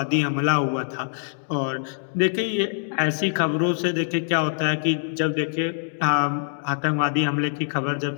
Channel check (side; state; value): right; silent; digital silence